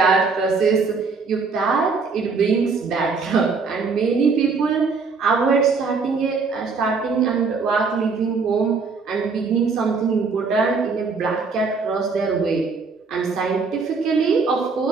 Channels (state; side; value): quieter; left; 4.7 dB